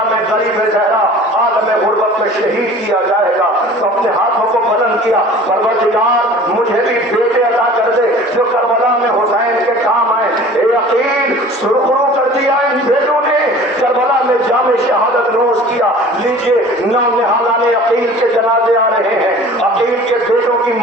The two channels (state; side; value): normal; both; correlation 0.44